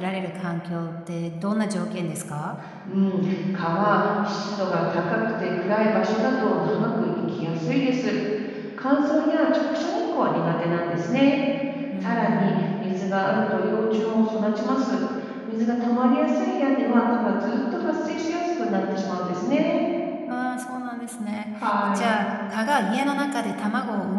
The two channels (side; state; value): both; identical; correlation 1.00